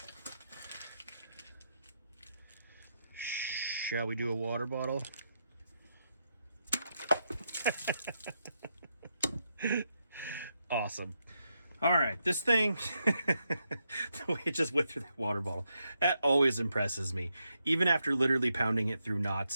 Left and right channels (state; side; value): inverted; both; correlation -0.82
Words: Shall we do a water bottle? Awesome. All right, this thing, the way it just went through that water bottle, that always impresses me. Even after literally pounding it through